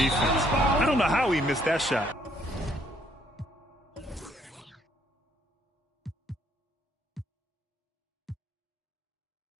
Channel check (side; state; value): both; normal; correlation 0.67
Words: I don't know how he missed that shot.